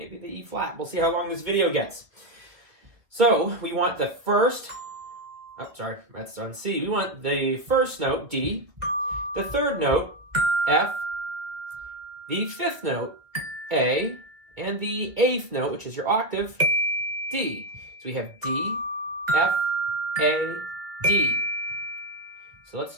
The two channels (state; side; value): late; left; 1.7 ms